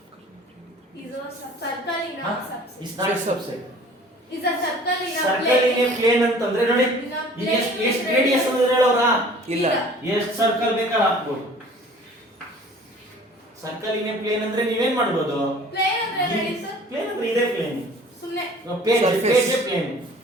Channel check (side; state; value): both; normal; correlation 0.49